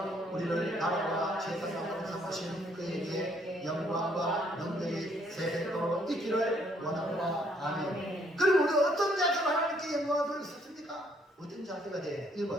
우리를 나라와 제사장으로 삼으신 그에게 영광과 능력이 세세토록 있기를 원합니다. 아멘. 그럼 우리가 어떤 자세로 하나님께 영광을 돌릴 수 있습니까? 어떤 자세가 돼?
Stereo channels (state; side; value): normal; both; correlation 0.67